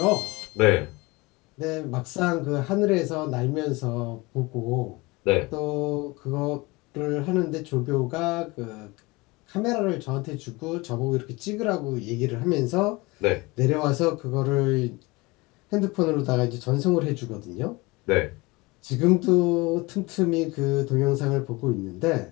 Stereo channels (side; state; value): right; quieter; 23.7 dB